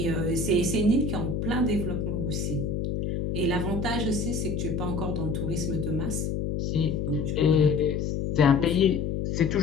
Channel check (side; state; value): left; noise; hum, 1 dB below the sound